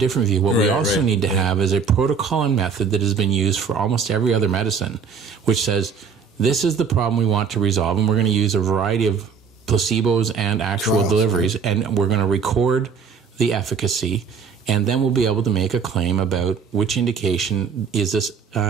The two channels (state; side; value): quieter; left; 6.0 dB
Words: view. What we also need to have is a protocol and method that has been used for almost every other medicine, which says this is the problem we want to resolve, and we're going to use a variety of placebos and actual deliveries, and we're going to record the efficacy, and then we'll be able to make a claim about which indication is this